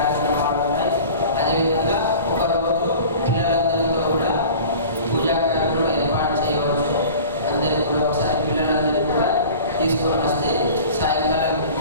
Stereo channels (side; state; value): both; inverted; correlation -0.41